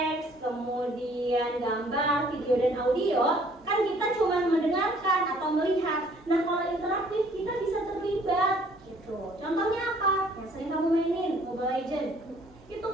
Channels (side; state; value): both; normal; correlation 0.59